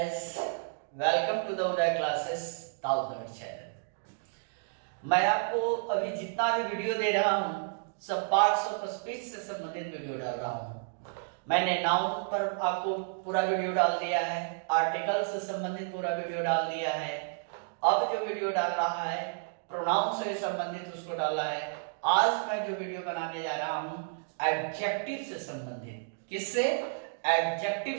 welcome to the Uday classes ताउदर channel. मैं आपको अभी जितना भी वीडियो दे रहा हूँ सब पार्ट्स ऑफ स्पीच से संबंधित वीडियो डाल रहा हूँ। मैंने नाउन पर आपको पूरा वीडियो डाल दिया है, आर्टिकल से संबंधित पूरा वीडियो डाल दिया है। अब जो वीडियो डाल रहा है प्रोनाउन से संबंधित उसको डाला है। आज मैं जो वीडियो बनाने जा रहा हूँ एडजेक्टिव से संबंधित, किससे? एडजेक्टिव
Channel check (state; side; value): silent; left; digital silence